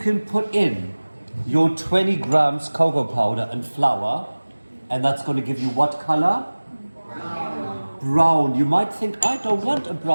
put in your 20 grams cocoa powder and flour, and that's gonna give you what color? Brown. You might think, I don't want a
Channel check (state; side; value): inverted; both; correlation -1.00